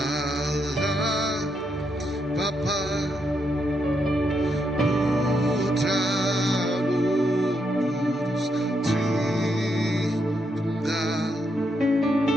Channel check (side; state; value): both; normal; correlation 0.79